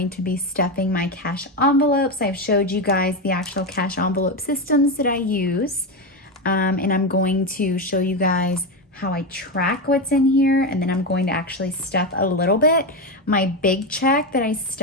to be stuffing my cash envelopes. I've showed you guys the actual cash envelope systems that I use. And I'm going to show you guys how I track what's in here, and then I'm going to actually stuff a little bit. My big check that I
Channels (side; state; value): both; normal; correlation 0.13